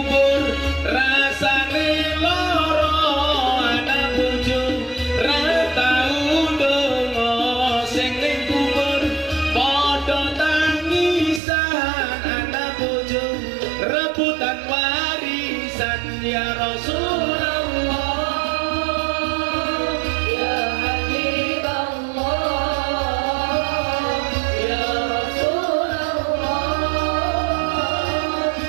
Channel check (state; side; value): drops out; left; at 11.4 s